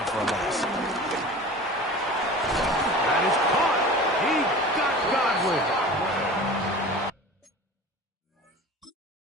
for a loss. That is caught. He got Godwin.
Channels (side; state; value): both; normal; correlation 0.37